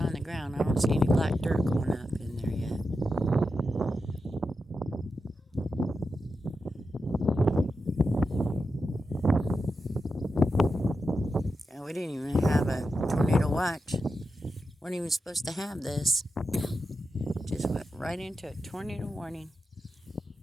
the ground. I don't see any black dirt going up in there yet. And we didn't even have a tornado watch. Weren't even supposed to have this. Just went right into a tornado warning.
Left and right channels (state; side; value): normal; both; correlation 0.89